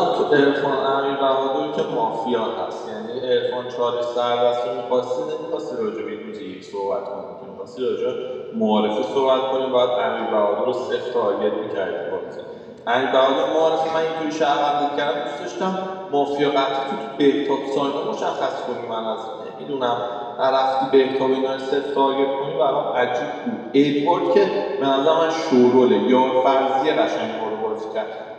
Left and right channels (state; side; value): identical; both; correlation 1.00